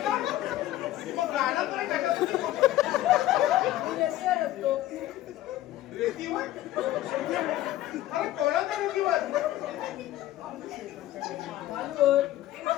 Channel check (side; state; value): right; quieter; 14.4 dB